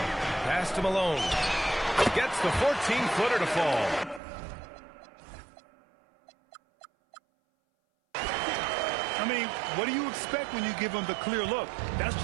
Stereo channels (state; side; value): drops out; left; at 4.2 s